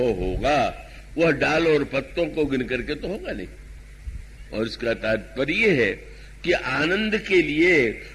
होगा वह डाल और पत्तों को गिन करके तो होगा नहीं। और इसका तात्पर्य है कि आनंद के लिए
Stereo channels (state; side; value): identical; both; correlation 1.00